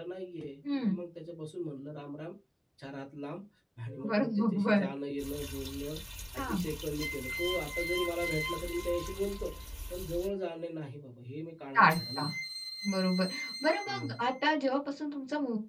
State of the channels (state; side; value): identical; both; correlation 1.00